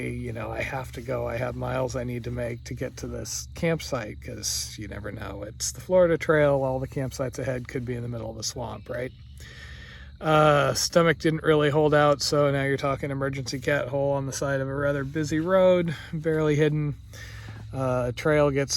you know, I have to go. I have miles I need to make to get to this campsite because you never know. It's the Florida Trail. All the campsites ahead could be in the middle of a swamp, right? Stomach didn't really hold out, so now you're talking emergency cat hole on the side of a rather busy road, barely hidden. Trail gets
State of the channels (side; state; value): both; identical; correlation 1.00